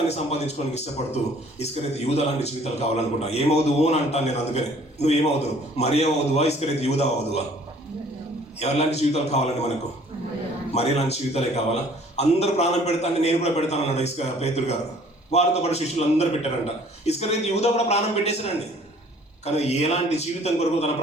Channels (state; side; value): normal; both; correlation 0.55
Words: సంపాదించుకోవడానికి ఇష్టపడుతూ ఇస్కరియోతు యూదా లాంటి జీవితాలు కావాలనుకుంటా? ఏమవుదువు అని అంటాను నేను. అందుకని నువ్వు ఏమవుదువు? మరియా అవుదువా, ఇస్కరియోతు యూదా అవుదువా? ఎవరిలాంటి జీవితాలు కావాలండి మనకు? మరియా లాంటి జీవితాలే కావాలా? అందరూ ప్రాణం పెడతాను, నేను కూడా పెడతాను అన్నాడు పేతురు గారు. వారితో పాటు శిష్యులు అందరూ పెట్టారంట. ఇస్కరియోతు యూదా కూడా ప్రాణం పెట్టేశారండి. కానీ ఎలాంటి జీవితం కొరకు తన